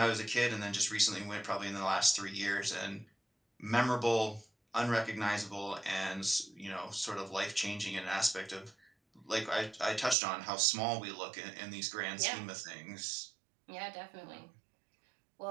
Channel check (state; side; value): drops out; left; at 10.2 s